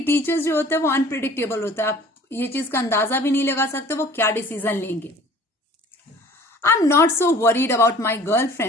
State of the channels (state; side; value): normal; both; correlation 0.49